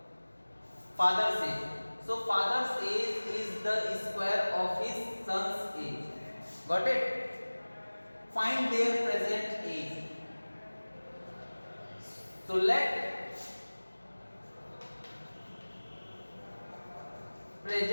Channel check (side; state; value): both; inverted; correlation -1.00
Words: father's age. So father's age is the square of his son's age. Got it? Find their present age. So let